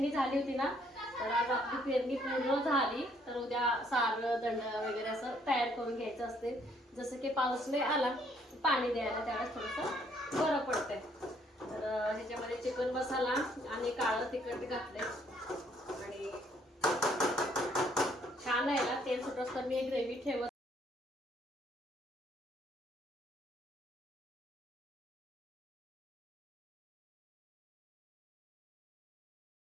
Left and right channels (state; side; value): normal; both; correlation 0.66